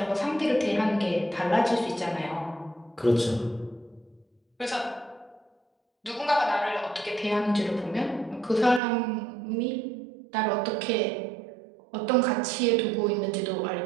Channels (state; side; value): drops out; left; at 8.8 s